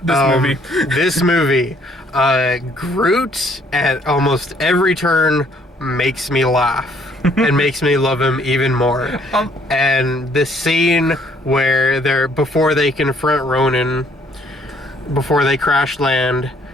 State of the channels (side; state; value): both; normal; correlation 0.64